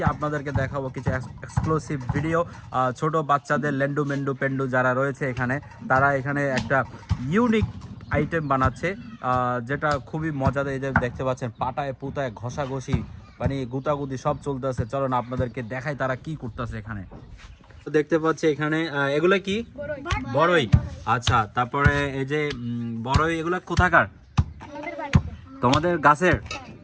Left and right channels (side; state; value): both; identical; correlation 1.00